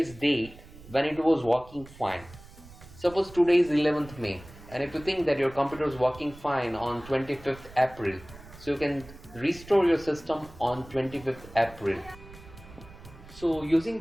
date when it was working fine. Suppose today is 11th May, and if you think that your computer is working fine on 25th April, so you can restore your system on 25th April. So using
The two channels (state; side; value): noise; right; rumble, 19 dB below the sound